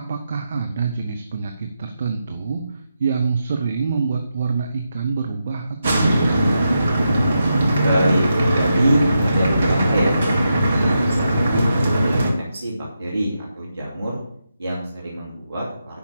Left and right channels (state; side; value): inverted; both; correlation -0.85